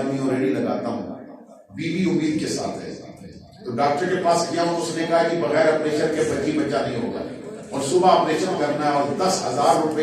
ہوں، ریڑھی لگاتا ہوں، بیوی امید کے ساتھ ہے۔ تو ڈاکٹر کے پاس گیا ہوں، اس نے کہا کہ بغیر آپریشن کے بچہ نہیں ہوگا، اور صبح آپریشن کرنا ہے اور 10,000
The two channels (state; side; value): identical; both; correlation 1.00